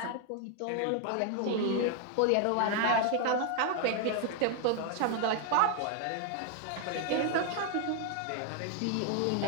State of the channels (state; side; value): different; both; correlation 0.00